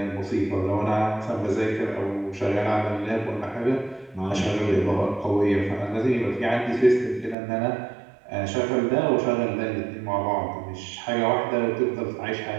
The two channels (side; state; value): left; drops out; at 7.4 s